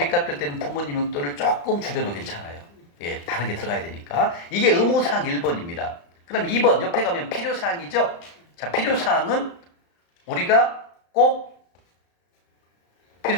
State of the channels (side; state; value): right; late; 35 ms